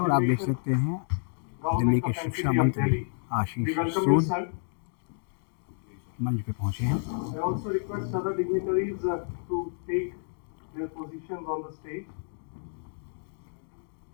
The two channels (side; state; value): right; silent; digital silence